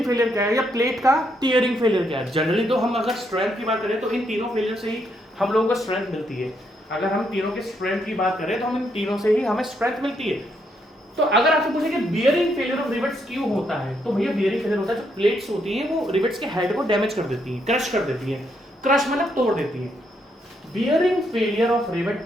फेलियर क्या है, या प्लेट का टियरिंग फेलियर क्या है। जनरली तो हम अगर स्ट्रेंथ की बात करें तो इन तीनों फेलियर से ही हम लोगों को स्ट्रेंथ मिलती है। अगर हम तीनों के स्ट्रेंथ की बात करें तो हम इन तीनों से ही हमें स्ट्रेंथ मिलती है। तो अगर आपसे पूछे कि बियरिंग फेलियर ऑफ रिवेट्स क्यों होता है, तो भैया बियरिंग फेलियर होता है, जो प्लेट्स होती हैं वो रिवेट्स के हेड को डैमेज कर देती हैं, क्रश कर देती हैं, क्रश मतलब तोड़ देती हैं। Bearing failure of rivet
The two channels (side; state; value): both; normal; correlation 0.76